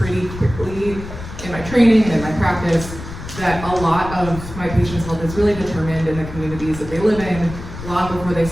quickly in my training and in my practice that a lot of my patients' health is really determined in the communities that they live in long before they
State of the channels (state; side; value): noise; left; rumble, 11 dB below the sound